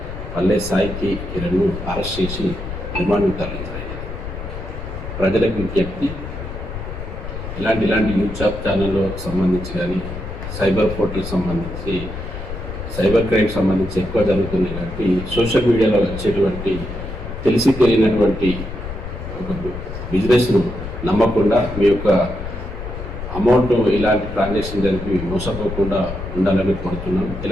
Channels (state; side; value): noise; left; rumble, 8 dB below the sound